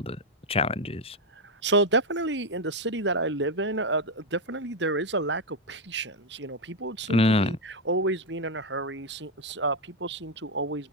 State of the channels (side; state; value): both; normal; correlation 0.04